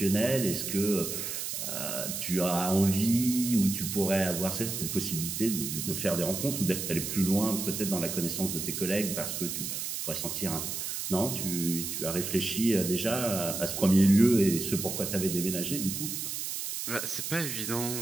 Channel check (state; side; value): noise; right; hiss, 4 dB below the sound